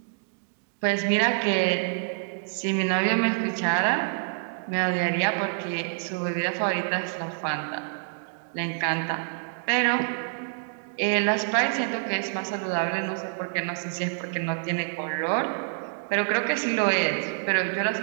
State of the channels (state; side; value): silent; left; digital silence